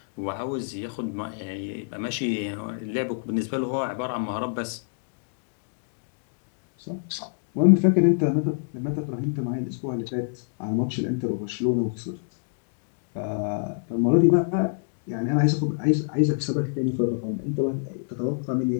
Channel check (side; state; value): right; silent; digital silence